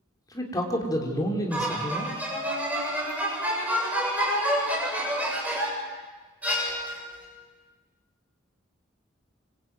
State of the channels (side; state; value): both; normal; correlation 0.34